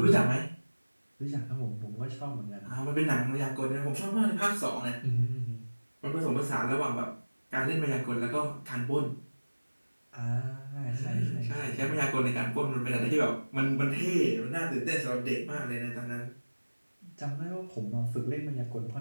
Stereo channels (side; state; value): both; inverted; correlation -1.00